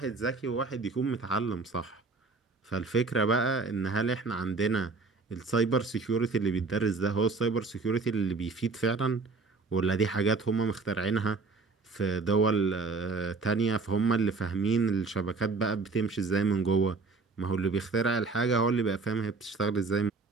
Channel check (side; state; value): left; quieter; 4.1 dB